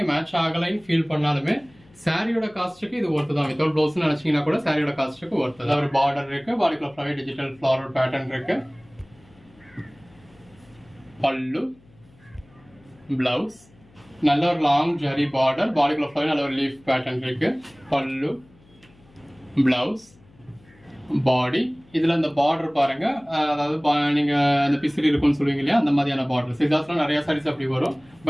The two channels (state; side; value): noise; left; hum, 28 dB below the sound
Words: மேட்ச் ஆகலைன்னு ஃபீல் பண்ணாலுமே சாரியோட காஸ்ட்டுக்கு இது ஒர்த்து தான். வித்தவுட் பிளவுஸ் நினைச்சீங்கன்னா கூட சாரியோட காஸ்ட்டுக்கு ஒர்த்து தான். ஒரு பார்டர் இருக்கு. பாடிக்குள்ள ஃபுல்லாவே டிஜிட்டல் ஃப்ளாரல் பேட்டர்ன் இருக்கு. பல்லு, பிளவுஸ் நல்ல ஒரு லாங் ஜரி பார்டர். பாடிக்குள்ள ஃபுல்லாவே நல்ல ஒரு லீஃப் பேட்டர்ன் இருக்கு. பல்லு, பிளவுஸ், பாடி. இதுல இந்த பார்டர் பாருங்க. அதாவது நீங்க அந்த பிசிறி இருக்குன்னு சொல்லுவீங்க இல்லையா, அந்த மாதிரியான பார்டர். சிதாஸ்ல நிறைய சாரீஸ் அப்படி வரும்.